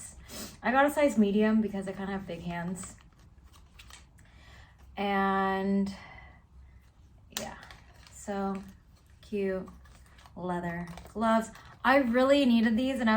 I got a size medium because I kind of have big hands. And yeah, so cute leather gloves. I really needed these, and I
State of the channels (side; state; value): both; identical; correlation 1.00